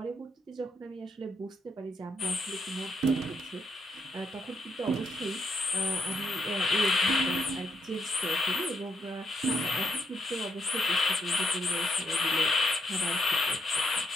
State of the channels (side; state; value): both; normal; correlation 0.77